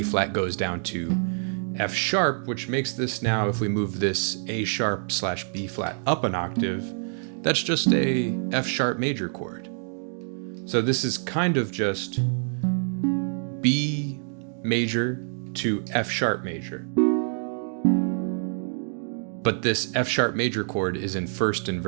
flat goes down to F sharp, which makes this now, if we move this A sharp / B flat up an octave, that's just a F sharp major chord. So this is kind of just B major to F sharp major. But this F sharp major chord is in first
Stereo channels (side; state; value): left; silent; 61 dB below the other